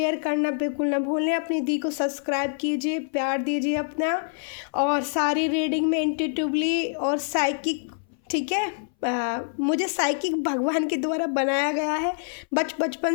करना बिल्कुल ना भूलें। अपनी दी को सब्सक्राइब कीजिए, प्यार दीजिए अपना। और सारी रीडिंग में इंट्यूटिवली और साइकिक, ठीक है, मुझे साइकिक भगवान के द्वारा बनाया गया है। बचपन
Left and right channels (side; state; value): right; silent; 60 dB below the other